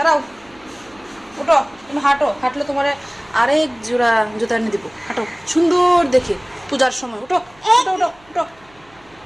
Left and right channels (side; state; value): right; noise; hum, 29 dB below the sound